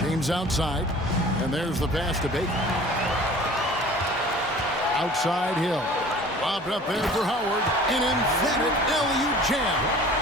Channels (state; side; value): normal; both; correlation 0.45